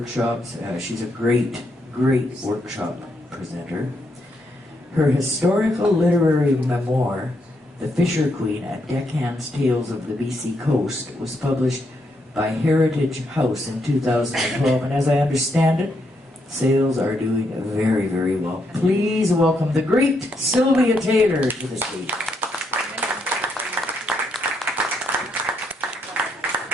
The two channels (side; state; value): both; normal; correlation 0.78